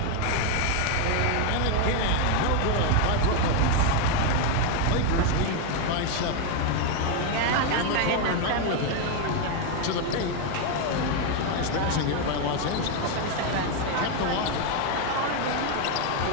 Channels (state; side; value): different; both; correlation 0.01